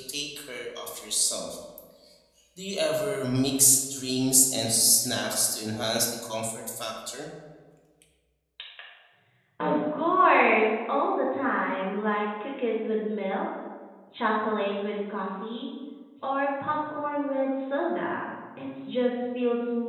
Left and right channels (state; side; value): identical; both; correlation 1.00